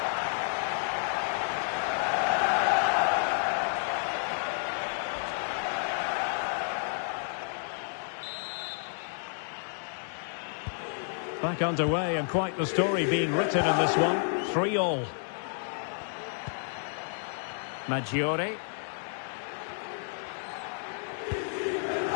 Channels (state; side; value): silent; right; digital silence